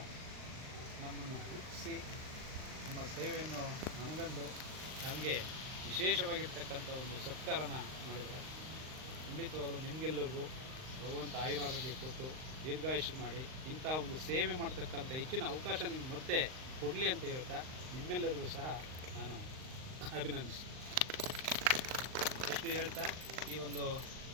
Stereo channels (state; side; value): late; left; 39 ms